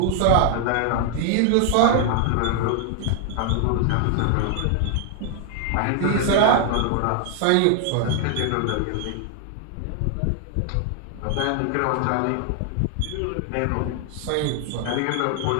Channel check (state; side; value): different; both; correlation 0.00